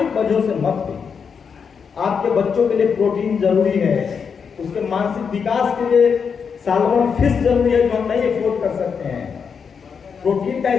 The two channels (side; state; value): right; quieter; 6.3 dB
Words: वजहों से मत भी। आपके बच्चों के लिए प्रोटीन जरूरी है, उसके मानसिक विकास के लिए सालमन फिश जरूरी है जो हम नहीं अफोर्ड कर सकते हैं। प्रोटीन का